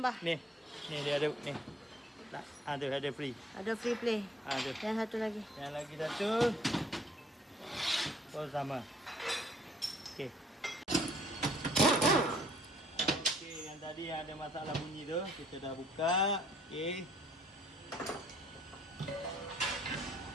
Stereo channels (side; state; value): both; normal; correlation 0.60